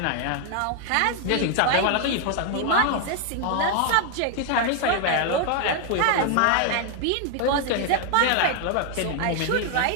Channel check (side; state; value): both; different; correlation 0.00